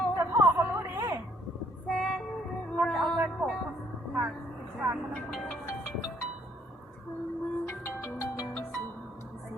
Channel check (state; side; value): normal; both; correlation 0.65